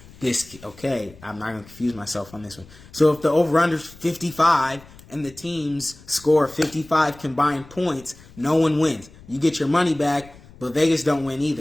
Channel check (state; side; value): noise; left; rumble, 22 dB below the sound